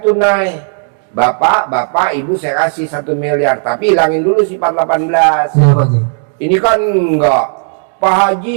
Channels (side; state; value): left; silent; 60 dB below the other